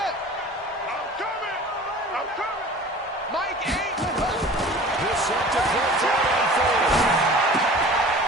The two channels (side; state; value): both; normal; correlation 0.42